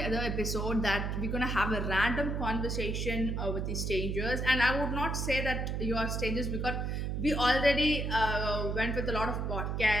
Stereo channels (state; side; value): noise; right; hum, 1 dB below the sound